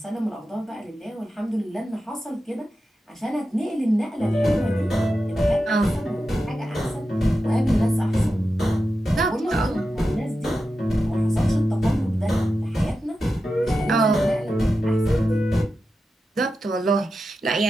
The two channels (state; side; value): normal; both; correlation 0.91